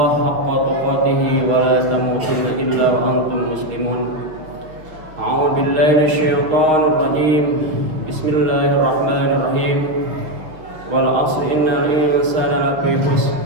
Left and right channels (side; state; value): left; late; 6.2 ms